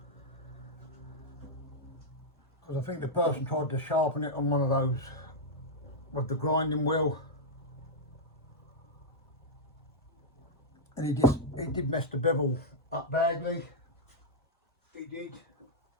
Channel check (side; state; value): both; normal; correlation -0.05